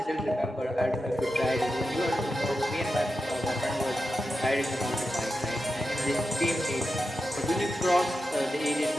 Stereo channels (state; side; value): normal; both; correlation 0.90